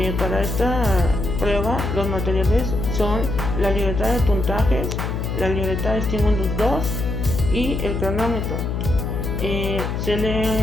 Para esta prueba los materiales son la libreta de puntajes, la libreta de estímulos 2 y el cronómetro.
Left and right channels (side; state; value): left; noise; hum, 2 dB below the sound